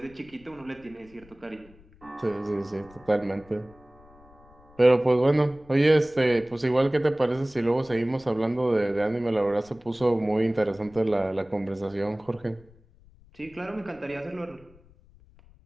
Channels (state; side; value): noise; left; rumble, 26 dB below the sound